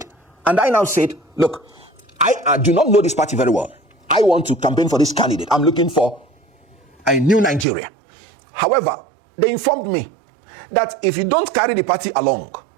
And I now said, look, I do not know this party very well. I want to campaign for this candidate. I'm looking for a new Nigeria. However, they informed me that if you don't carry the party along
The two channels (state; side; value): drops out; left; at 7.7 s